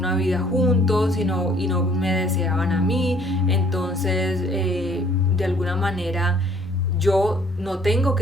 vida juntos y no me deseaban a mí? Entonces de alguna manera yo no tengo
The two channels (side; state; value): both; normal; correlation 0.59